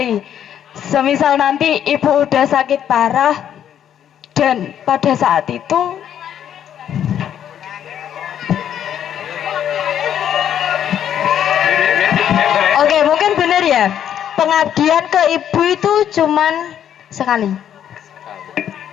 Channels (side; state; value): right; quieter; 9.8 dB